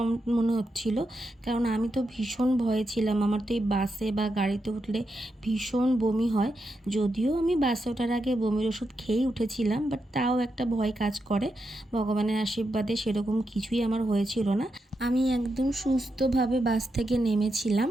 মনে হচ্ছিল, কারণ আমি তো ভীষণ ভয়ে ছিলাম। আমার তো এই বাসে বা গাড়িতে উঠলে ভীষণ বমি হয়। যদিও আমি বাসে ওঠার আগে বমির ওষুধ খেয়েই উঠেছিলাম, বাট তাও একটা ভয় কাজ করে। ভগবানের আশীর্বাদে সেরকম কিছুই আমার হয়েছিল না। আমি একদম সুস্থভাবে বাস থেকে নেমেছিলাম,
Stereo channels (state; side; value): normal; both; correlation 0.85